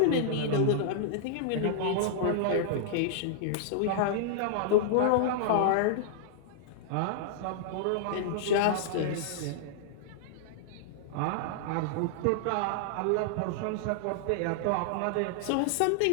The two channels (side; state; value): both; different; correlation -0.01